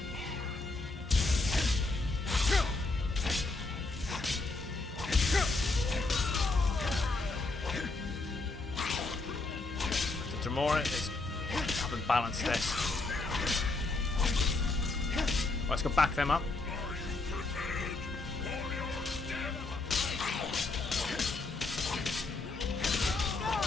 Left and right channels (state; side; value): quieter; right; 3.4 dB